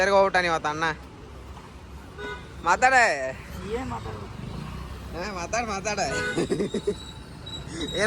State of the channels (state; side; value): identical; both; correlation 1.00